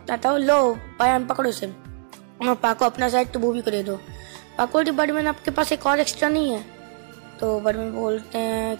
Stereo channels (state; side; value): silent; left; digital silence